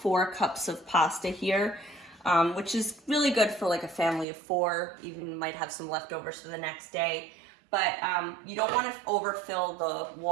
cups of pasta here, which is really good for like a family of 4. Even might have some leftovers for the next day. But you don't want to overfill the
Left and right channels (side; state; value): left; drops out; at 4.2 s